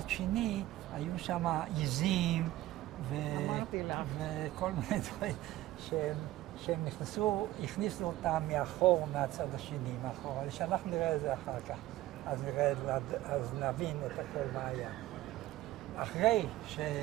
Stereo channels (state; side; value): quieter; left; 15.9 dB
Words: שני, היו שם עיזים וכל מיני דברים שהם הכניסו אותם מאחור, מהצד השני, מאחור. אבל שאנחנו נראה את זה אחר כך, אז נבין את הכל מה היה. אחרי